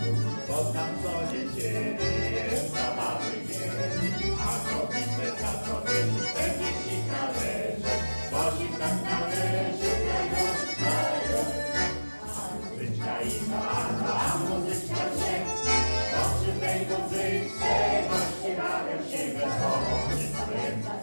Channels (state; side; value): inverted; both; correlation -1.00